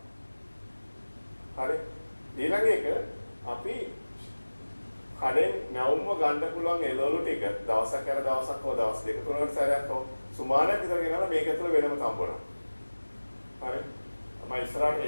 හරි. ඊළඟ එක අපි කඩෙන් නැවුම්ව ගන්න පුළුවන් එළවලු ටික දවසක් කර දවසක් හෝ දවස් දෙක තුනකට සැරයක් හෝ සුමානක් විතර ගෙනලා මේක ඇතුළ වෙනම තම්බනවා. හරි. මම ඉස්සරහට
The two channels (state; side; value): inverted; both; correlation -1.00